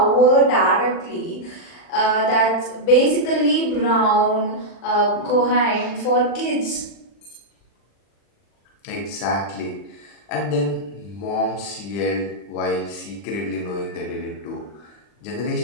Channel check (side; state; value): right; late; 40 ms